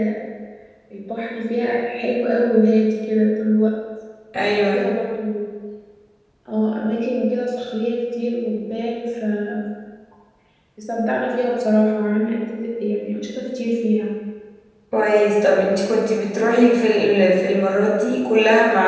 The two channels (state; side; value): identical; both; correlation 1.00